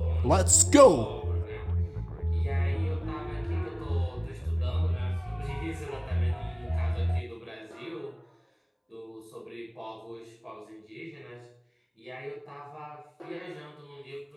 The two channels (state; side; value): identical; both; correlation 1.00